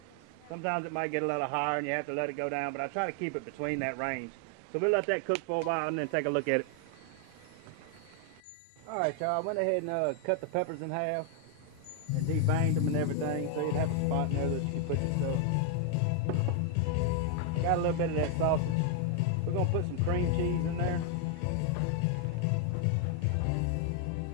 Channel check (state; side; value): different; both; correlation 0.00